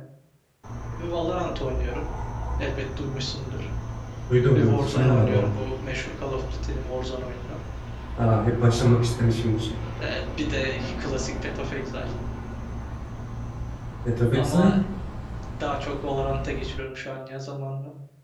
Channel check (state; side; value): identical; both; correlation 1.00